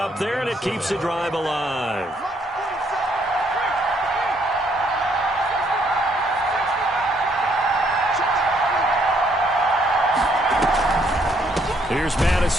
there, and it keeps the drive alive. Here's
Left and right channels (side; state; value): both; normal; correlation 0.69